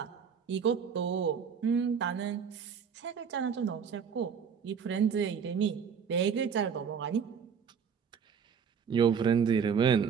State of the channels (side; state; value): left; quieter; 6.9 dB